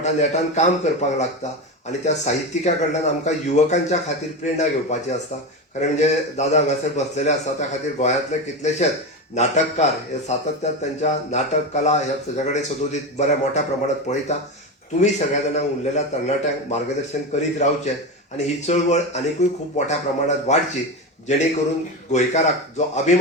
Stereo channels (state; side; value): normal; both; correlation 0.19